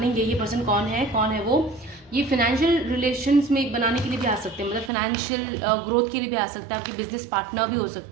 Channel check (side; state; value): left; drops out; at 4.9 s